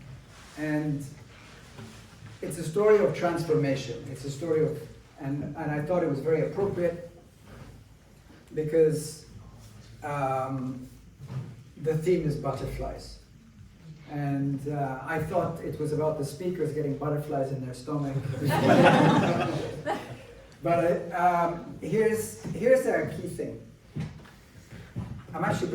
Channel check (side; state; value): both; identical; correlation 1.00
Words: And it's a story of transformation. It's a story of, and I thought it was very appropriate because the theme is butterflies. And I thought it was about the speakers getting butterflies in their stomach. But here's a key thing. I'm actually